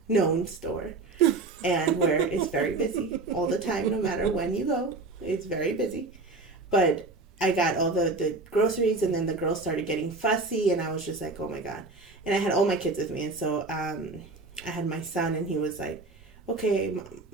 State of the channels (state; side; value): quieter; left; 3.6 dB